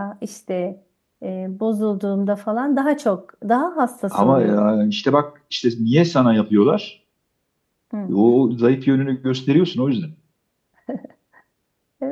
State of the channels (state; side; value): identical; both; correlation 1.00